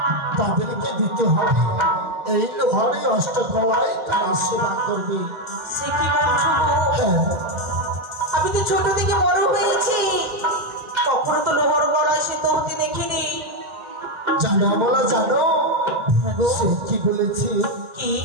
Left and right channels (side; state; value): left; late; 1.4 ms